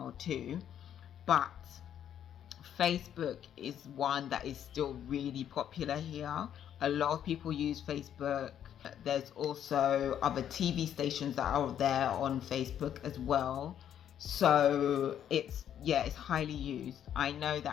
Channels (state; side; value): quieter; right; 9.9 dB